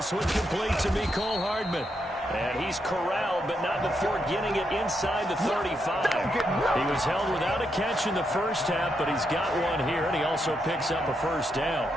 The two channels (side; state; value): both; normal; correlation 0.81